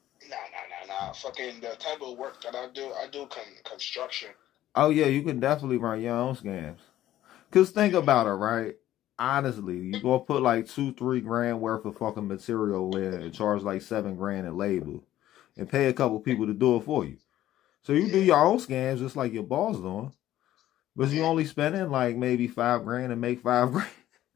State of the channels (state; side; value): quieter; right; 13.4 dB